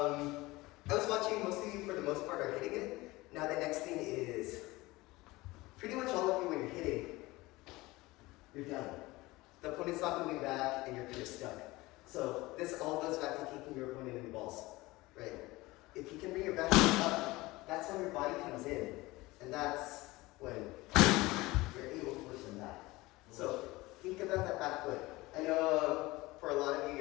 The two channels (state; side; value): quieter; right; 20.6 dB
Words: was watching most of you for the most part are hitting it. Now the next thing is, pretty much all of you when you're hitting, you're done. The opponent's not moving back and you're kind of stuck. So this all goes back to kicking your opponent in the balls, right? if you can bring your back foot up, that's when your body comes in. And that's when you're able to push them back. So think about that back foot. I know for a lot of you,